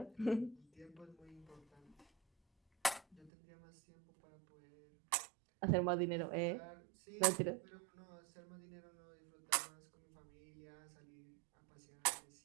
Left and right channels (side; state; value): left; drops out; at 3.3 s